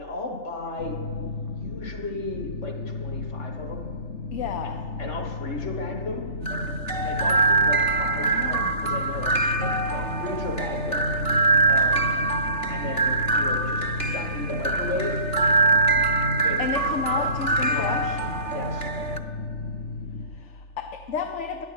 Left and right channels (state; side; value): late; right; 3.4 ms